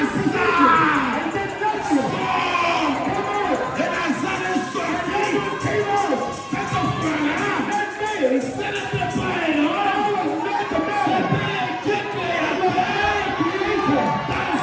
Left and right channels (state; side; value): identical; both; correlation 1.00